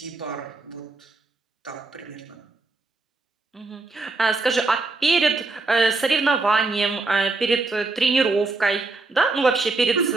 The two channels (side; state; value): left; quieter; 3.4 dB